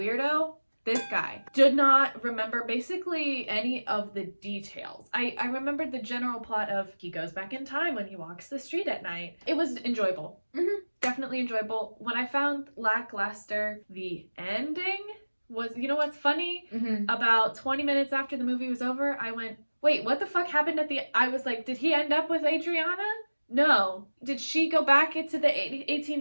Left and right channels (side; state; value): both; inverted; correlation -1.00